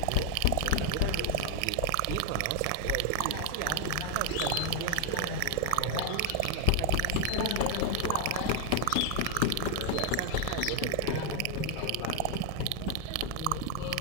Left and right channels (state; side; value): different; both; correlation 0.01